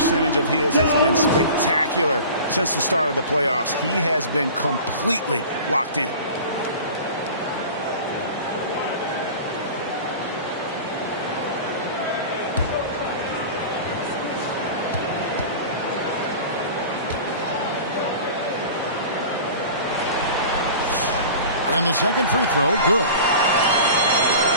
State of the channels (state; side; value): inverted; both; correlation -0.38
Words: of his has been spectacular since the start of the playoffs. He has been completely locked in. And the second free throw, good.